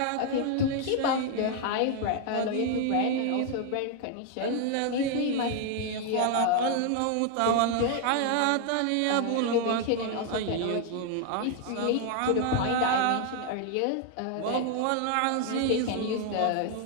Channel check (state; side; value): different; both; correlation 0.00